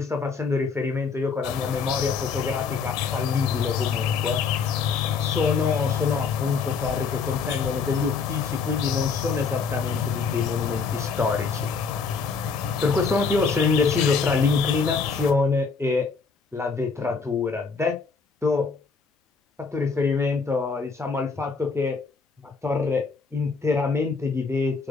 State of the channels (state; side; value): quieter; right; 5.0 dB